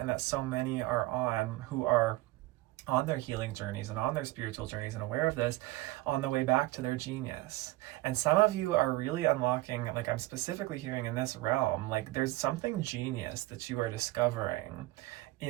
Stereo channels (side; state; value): left; quieter; 18.9 dB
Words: that so many are on who are on their healing journeys and on their spiritual journeys and aware of this on the way back to their genius. And some of you are really unlocking, like I'm specifically hearing in this realm, like there's something genius that you are discovering